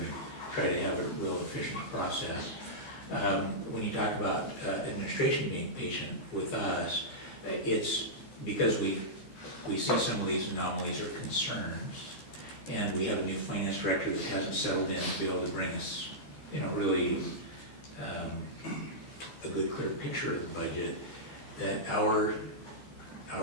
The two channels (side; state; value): right; late; 14 ms